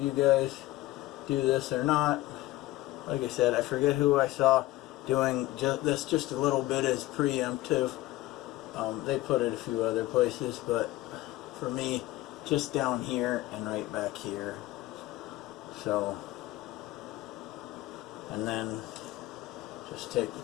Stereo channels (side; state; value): right; quieter; 17.1 dB